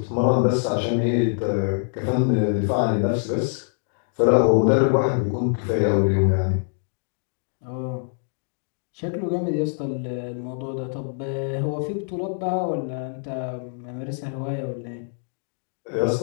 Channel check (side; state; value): right; silent; digital silence